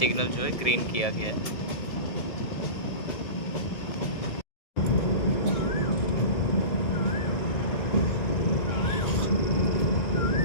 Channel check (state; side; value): late; right; 1.7 ms